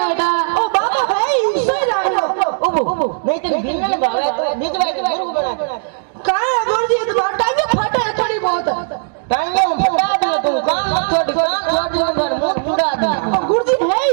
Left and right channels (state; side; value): silent; left; digital silence